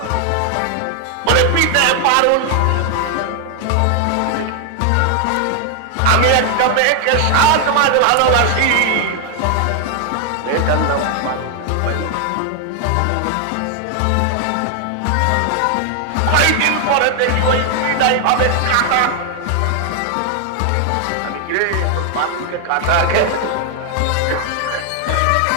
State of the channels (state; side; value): different; both; correlation 0.00